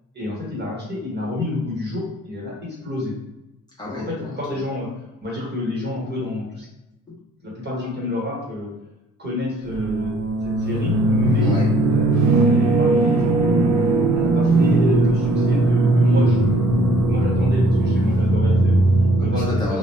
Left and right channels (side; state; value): both; normal; correlation 0.60